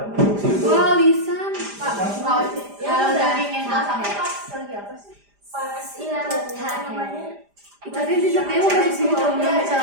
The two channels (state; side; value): late; left; 5.0 ms